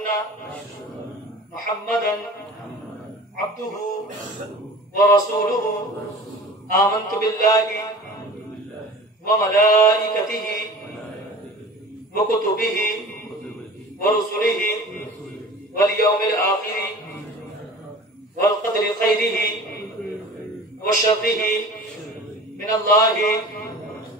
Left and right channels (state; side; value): normal; both; correlation 0.40